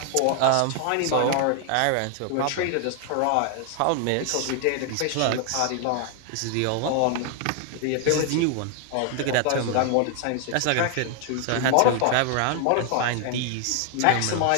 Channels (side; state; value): both; different; correlation 0.00